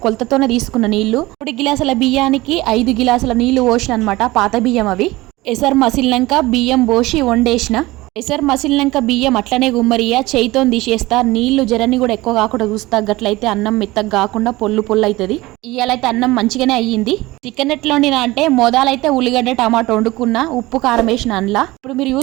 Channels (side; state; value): left; quieter; 19.7 dB